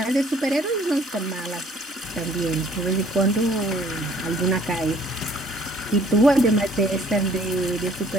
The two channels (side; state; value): both; normal; correlation 0.58